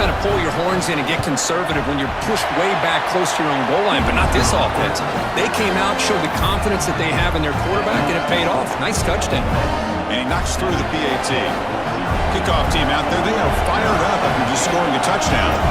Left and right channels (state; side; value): identical; both; correlation 1.00